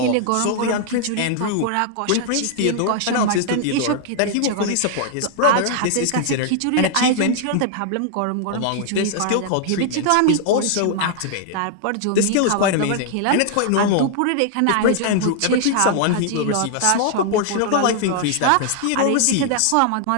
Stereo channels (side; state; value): both; different; correlation -0.01